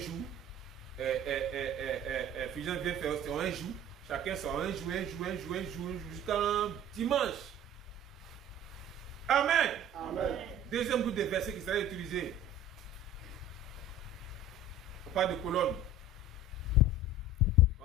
Fusion vient faire son un jour. Chacun son un jour, jusqu'à dimanche. Amen. Amen. Deuxième groupe de versets qui sera utilisé. On parle de colonne. On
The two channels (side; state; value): both; normal; correlation 0.43